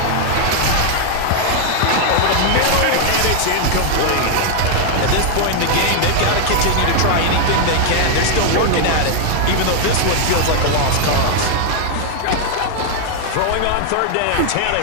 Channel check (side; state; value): both; different; correlation 0.00